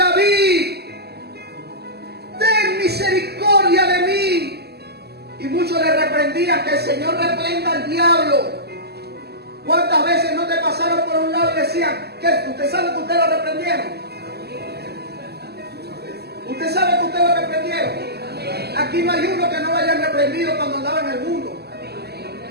ten misericordia de mí. Y muchos le reprendían: que el Señor reprenda al diablo. ¿Cuántas veces no te pasaron por un lado y decían: que usted sabe que usted lo reprendieron? ¿Usted sabe que usted lo reprendieron? Aquí no hay uno que no lo hayan reprendido cuando andaba en el mundo.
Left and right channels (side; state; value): left; late; 0.47 ms